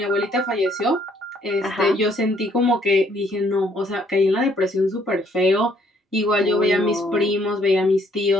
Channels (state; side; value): normal; both; correlation 0.66